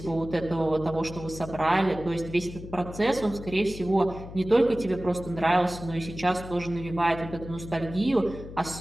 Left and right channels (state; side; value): noise; left; hum, 12 dB below the sound